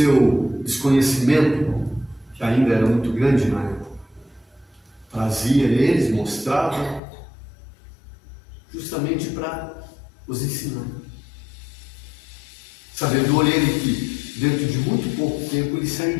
desconhecimento, que ainda era muito grande na época. Trazia eles, mostrava, justamente para os ensinar. Sabendo ele que dentro de muito pouco tempo ele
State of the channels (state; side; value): drops out; right; at 7.0 s